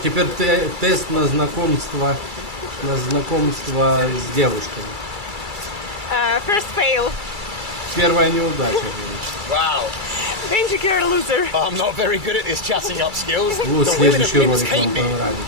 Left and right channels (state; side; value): late; left; 2.3 ms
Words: тест на знакомство с девушками. First fail. Первая неудача, говорит. Wow. Then Benji, you're a loser. I'm not very good at this chatting up skills. Вот The women of следующий Minsk ролик hate вам me.